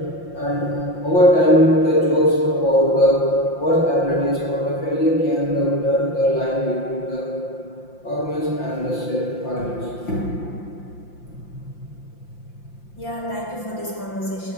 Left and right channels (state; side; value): late; right; 5.8 ms